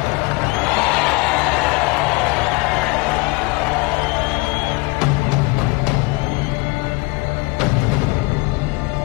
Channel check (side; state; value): right; quieter; 25.5 dB